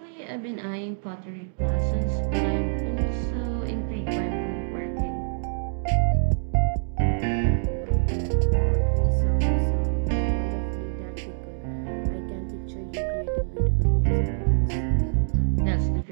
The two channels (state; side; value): silent; left; digital silence